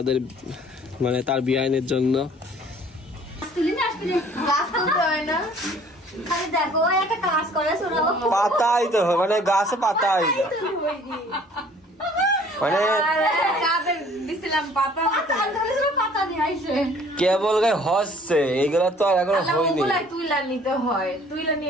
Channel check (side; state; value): both; normal; correlation 0.54